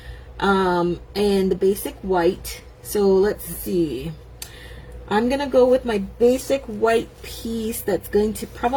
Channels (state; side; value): identical; both; correlation 1.00